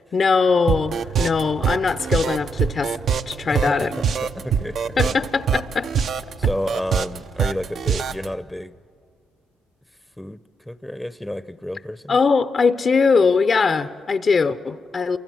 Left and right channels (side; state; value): both; normal; correlation 0.81